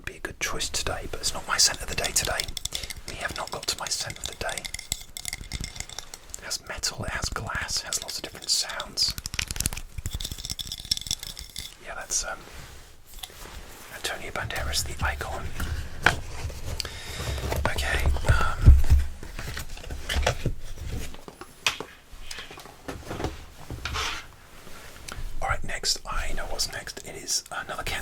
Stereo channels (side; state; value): both; identical; correlation 1.00